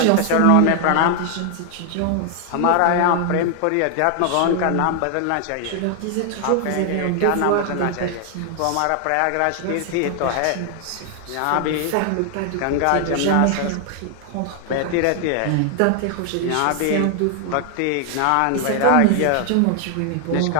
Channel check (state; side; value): different; both; correlation 0.00